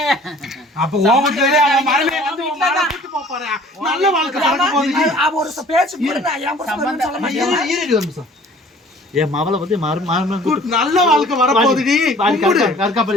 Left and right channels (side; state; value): both; normal; correlation 0.51